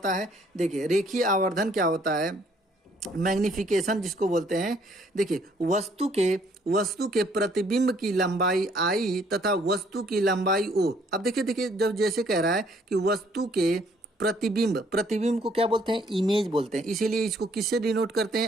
है, देखिए रेखीय आवर्धन क्या होता है, मैग्निफिकेशन जिसको बोलते हैं। देखिए वस्तु के प्रतिबिंब की लंबाई आई तथा वस्तु की लंबाई ओ। अब देखिए जब जैसे कह रहा है कि वस्तु के प्रतिबिंब को क्या बोलते हैं, इमेज बोलते हैं, इसीलिए इसको किससे डिनोट करते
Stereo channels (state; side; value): normal; both; correlation 0.64